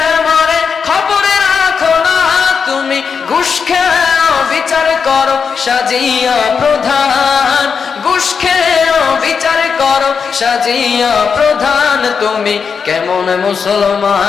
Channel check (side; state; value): right; quieter; 6.0 dB